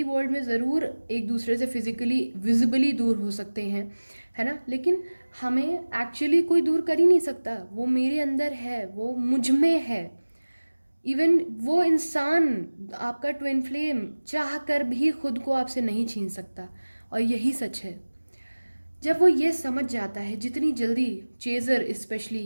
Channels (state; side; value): inverted; both; correlation -1.00